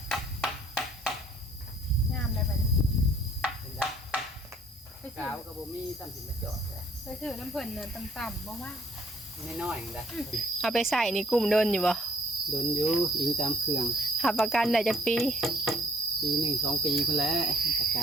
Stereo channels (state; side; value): normal; both; correlation 0.62